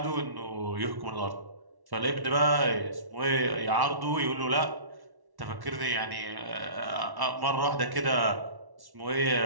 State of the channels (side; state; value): left; late; 1.1 ms